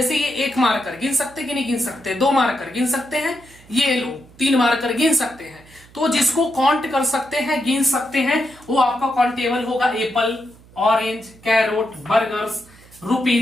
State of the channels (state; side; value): noise; right; hum, 25 dB below the sound